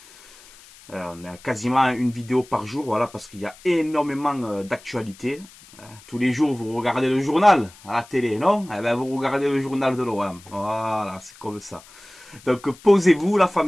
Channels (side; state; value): left; noise; hiss, 23 dB below the sound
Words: On a quasiment une vidéo par jour, voilà, parce qu'il y a énormément d'actualités. Tous les jours, vous regardez le journal à la télé, non? Eh ben, vous regardez le journal de l'OM. Voilà, c'est comme ça. Donc, posez-vous, la